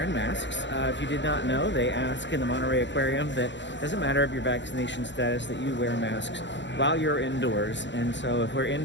masks. If you did not know, they ask in the Monterey Aquarium that it doesn't matter of your vaccination status, that you wear masks while you're indoors. And so if we're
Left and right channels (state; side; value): late; right; 0.53 ms